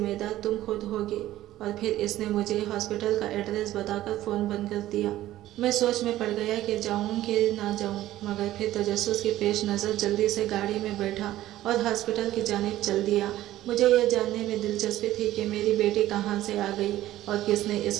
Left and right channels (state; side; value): quieter; left; 14.5 dB